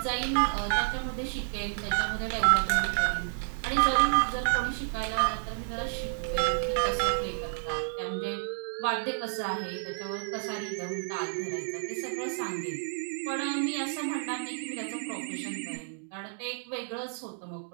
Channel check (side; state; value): left; silent; digital silence